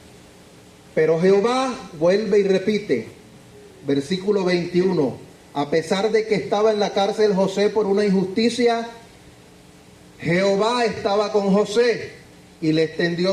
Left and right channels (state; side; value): identical; both; correlation 1.00